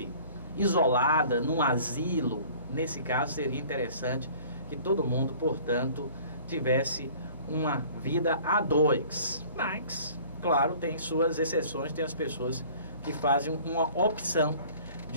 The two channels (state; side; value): inverted; both; correlation -0.49